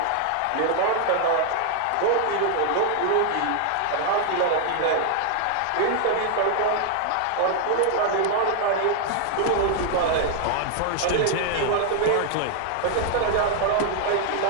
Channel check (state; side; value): different; both; correlation 0.00